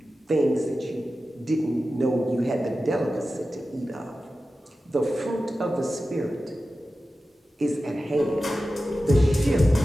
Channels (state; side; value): normal; both; correlation 0.94